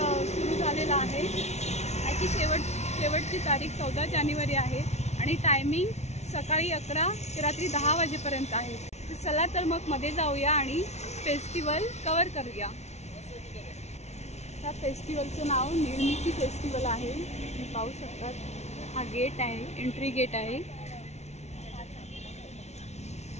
सुरू झालेला आहे। याची शेवटची तारीख 14 जानेवारी आहे आणि टायमिंग सकाळी 11 ते रात्री 10 वाजेपर्यंत आहे। तर चला तर मग मध्ये जाऊया आणि फेस्टिवल कव्हर करूया। या फेस्टिवलचं नाव निर्मिती फेस्टिवल आहे। तुम्ही पाहू शकतात, हा गेट आहे, एंट्री गेट आहे।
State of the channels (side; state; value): right; late; 0.32 ms